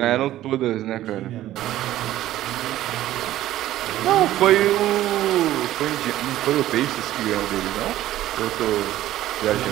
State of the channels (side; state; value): left; quieter; 14.0 dB